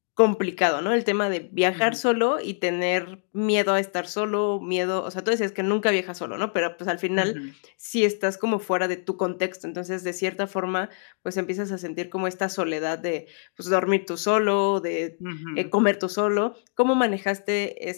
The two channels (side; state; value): right; silent; digital silence